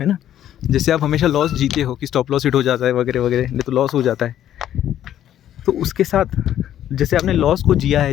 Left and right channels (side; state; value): right; quieter; 11.3 dB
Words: ना, जैसे आप हमेशा लॉस जीते हो कि स्टॉप लॉस हिट हो जाता है वगैरह वगैरह, नहीं तो लॉस हो जाता है, तो उसके साथ जैसे आपने लॉस को जिया